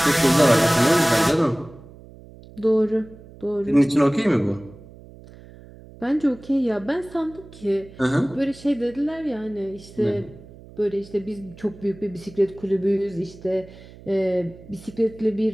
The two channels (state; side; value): noise; right; hum, 20 dB below the sound